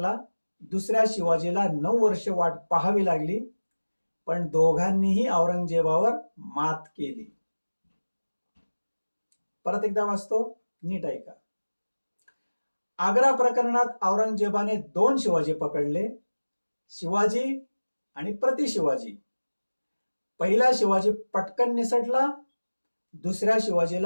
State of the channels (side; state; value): both; inverted; correlation -1.00